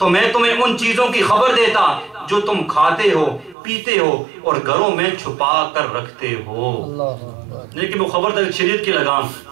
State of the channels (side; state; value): left; drops out; at 3.6 s